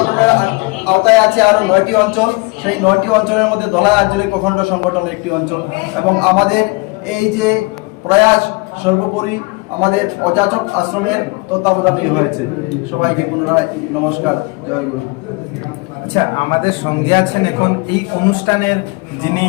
আওতায় আছে আরো 9টি অঞ্চল। সেই 9টি অঞ্চলের মধ্যে ধলাই আঞ্চলিক অখণ্ড সংগঠন একটি অঞ্চল। এবং আমাদের এই যে প্রয়াস সর্বোপরি আমাদের অযাচক আশ্রমের তত্ত্বাবধানে হয়েছে। সবাইকে পুনরায় নমস্কার, জয় গুরু। আচ্ছা, আমাদের সঙ্গে আছেন এখন এই অনুষ্ঠানের যিনি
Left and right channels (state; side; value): quieter; right; 27.3 dB